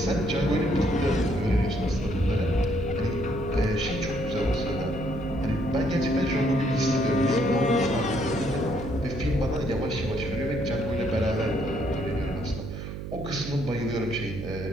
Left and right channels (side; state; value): right; noise; hum, 8 dB below the sound